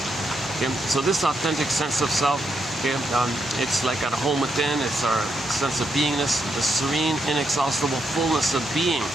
Okay? So this authentic sense of self, okay, it's like at home within. It's our sense of beingness, the serene, inexhaustible fullness of being.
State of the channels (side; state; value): both; normal; correlation 0.80